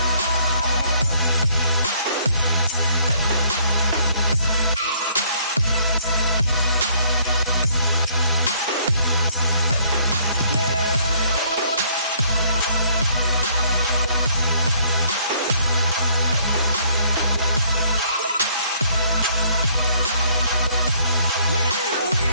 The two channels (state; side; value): inverted; both; correlation -0.63